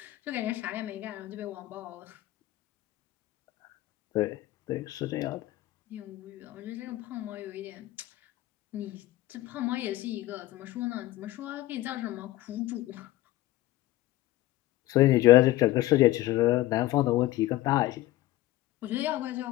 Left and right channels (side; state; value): right; quieter; 16.1 dB